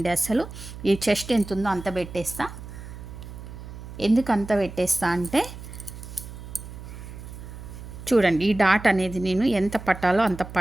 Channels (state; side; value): noise; right; hum, 12 dB below the sound